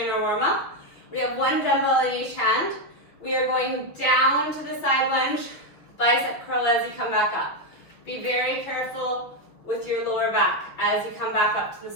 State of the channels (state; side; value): late; right; 6.2 ms